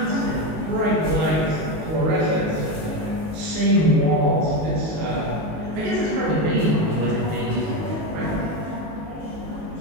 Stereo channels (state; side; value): late; left; 19 ms